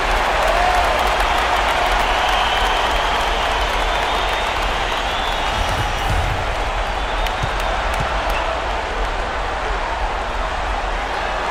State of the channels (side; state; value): both; identical; correlation 1.00